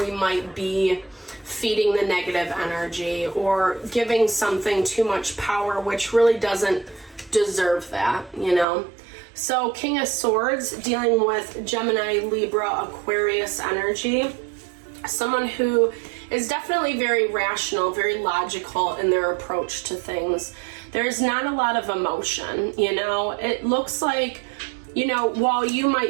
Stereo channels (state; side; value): drops out; left; at 8.7 s